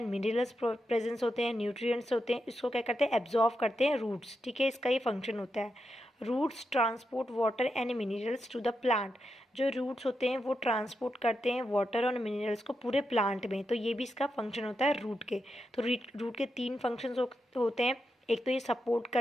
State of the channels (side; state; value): both; normal; correlation 0.86